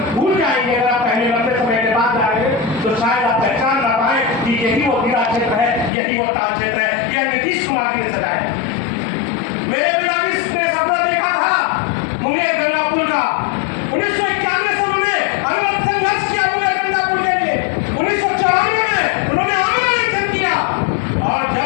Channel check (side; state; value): right; drops out; at 5.9 s